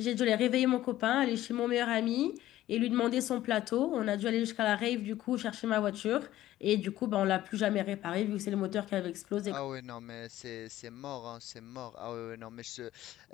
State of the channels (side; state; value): right; quieter; 14.4 dB